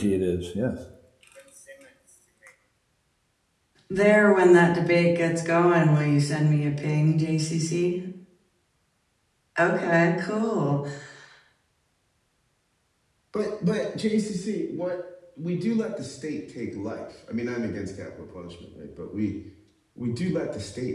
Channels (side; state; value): both; identical; correlation 1.00